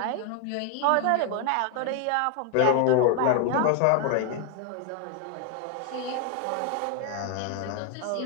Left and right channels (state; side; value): different; both; correlation 0.00